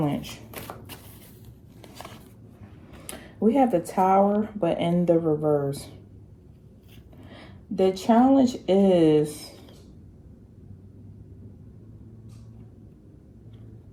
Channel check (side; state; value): both; identical; correlation 1.00